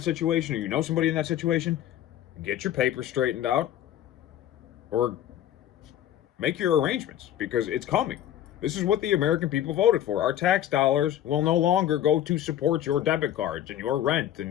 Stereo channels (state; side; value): quieter; right; 11.5 dB